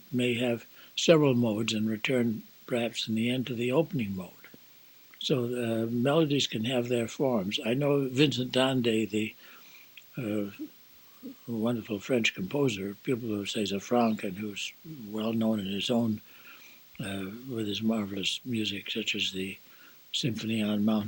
may have several modes and return perhaps in the end to the opening mode. So melodies can have their forms. I know Vincent d'Andé, the wonderful French composer, people who say Zafranc, and who's well known in his own, with his marvelous music, such as the Symphony on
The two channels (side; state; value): both; identical; correlation 1.00